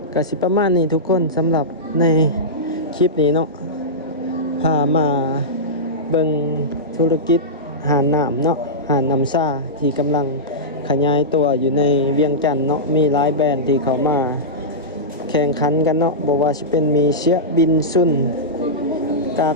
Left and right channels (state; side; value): normal; both; correlation -0.14